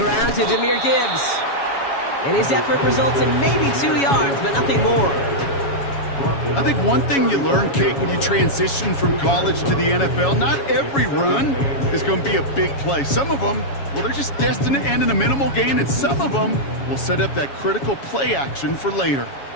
to Jahmyr Gibbs. And his effort results in maybe 2 yards, but nothing more. I think one thing you learn, Kate, when you transition from college to the NFL, not every run is going to be a big play. Some of them, well, they're just destined to end in a minimal gain, and some of them will set up that critical play action for later.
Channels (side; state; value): right; late; 7.2 ms